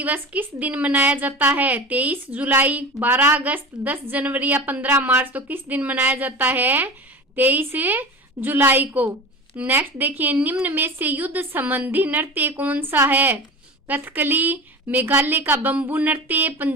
किस दिन मनाया जाता है? 23 जुलाई, 12 अगस्त, 10 जनवरी या 15 मार्च? तो किस दिन मनाया जाता है? 23 जुलाई को। नेक्स्ट देखिए, निम्न में से युद्ध संबंधी नृत्य कौन सा है? कथकली, मेघालय का बंबू नृत्य,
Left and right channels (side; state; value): both; normal; correlation 0.31